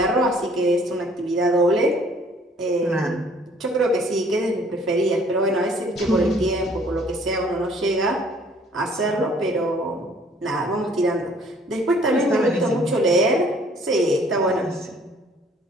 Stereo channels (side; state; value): both; normal; correlation 0.58